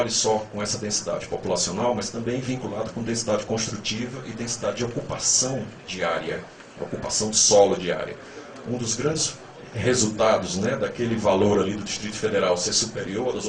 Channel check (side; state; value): both; identical; correlation 1.00